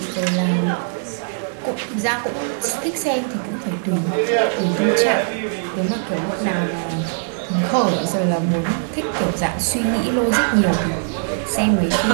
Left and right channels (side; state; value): left; silent; digital silence